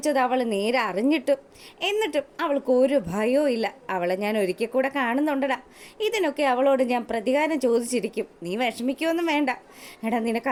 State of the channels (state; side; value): identical; both; correlation 1.00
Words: അവൾ നേരെ അറിഞ്ഞിട്ടും എന്നിട്ടും അവൾക്ക് ഒരു ഭയവും ഇല്ല. അവളെ ഞാൻ ഒരിക്കൽ കൂടെ കാണുന്നുണ്ടടാ. ഇതിനൊക്കെ അവളോട് ഞാൻ പ്രതികാരം ചോദിച്ചിരിക്കും. നീ വിഷമിക്കുമൊന്നും വേണ്ട. എടാ,